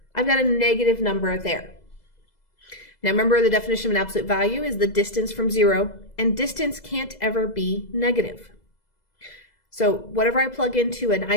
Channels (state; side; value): late; right; 2.0 ms